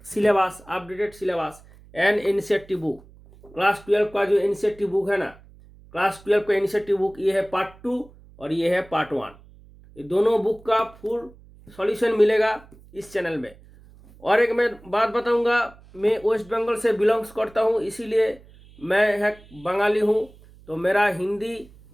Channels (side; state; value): right; noise; hum, 24 dB below the sound